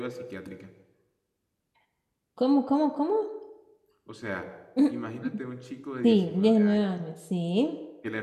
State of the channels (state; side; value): identical; both; correlation 1.00